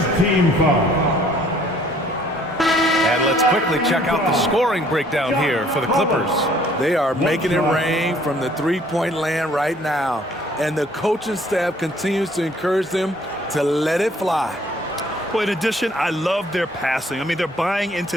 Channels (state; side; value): normal; both; correlation 0.59